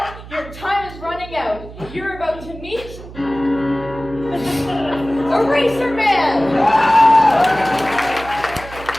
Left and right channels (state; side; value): noise; right; hum, 15 dB below the sound